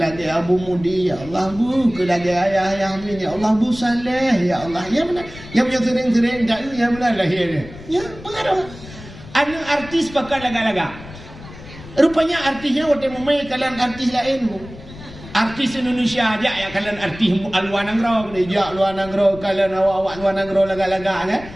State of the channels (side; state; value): left; noise; rumble, 16 dB below the sound